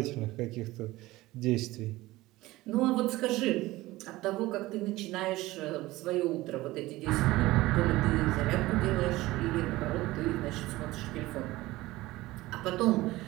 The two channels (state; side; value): quieter; left; 18.5 dB